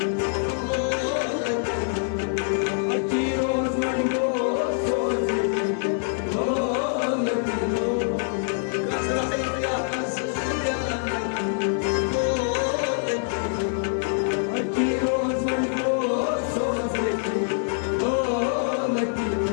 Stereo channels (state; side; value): silent; right; 56 dB below the other